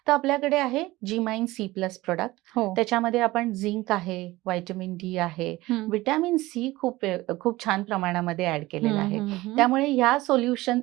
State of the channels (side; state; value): left; quieter; 18.9 dB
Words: तर आपल्याकडे आहे जीमाइन C+ प्रोडक्ट. हो. त्याच्यामध्ये आपण झिंक आहे, व्हिटॅमिन डी आहे, हं. व्हिटॅमिन सी खूप छान प्रमाणामध्ये ऍड केलेलं हं, आहे. हं, हं. त्यामुळे